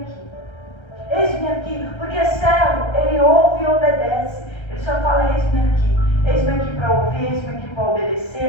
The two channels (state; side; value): late; right; 1.3 ms